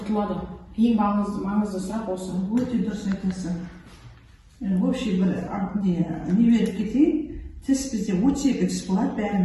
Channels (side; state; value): both; identical; correlation 1.00